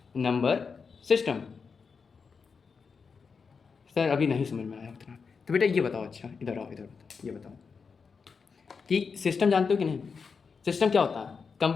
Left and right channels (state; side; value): quieter; right; 5.4 dB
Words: number system. Sir अभी नहीं समझ में आया उतना। तो बेटा ये बताओ, अच्छा इधर आओ, इधर बताओ, ये बताओ कि सिस्टम जानते हो कि नहीं? सिस्टम क्या होता है?